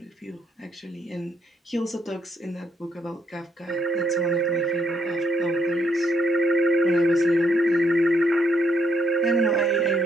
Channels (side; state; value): both; normal; correlation 0.74